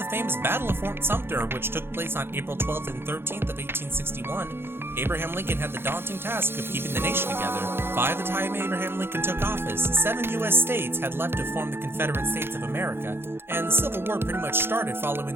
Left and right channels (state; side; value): late; left; 0.11 ms